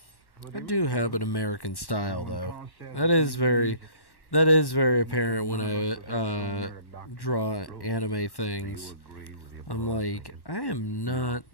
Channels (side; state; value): right; late; 1.1 ms